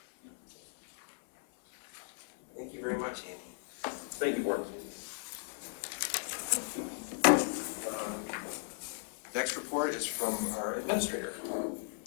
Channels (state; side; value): silent; right; 54 dB below the other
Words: Thank you very much, Andy. Thank you, board. Next report is from our administrator.